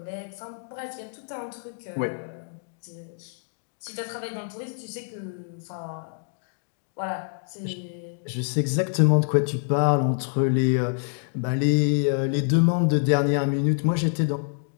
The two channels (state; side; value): silent; right; digital silence